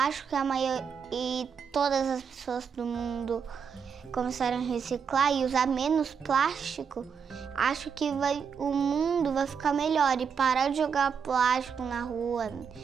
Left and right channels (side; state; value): left; quieter; 6.6 dB